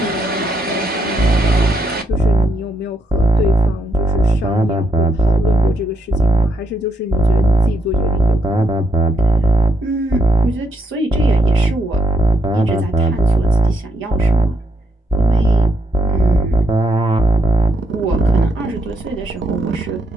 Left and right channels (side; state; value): both; normal; correlation 0.76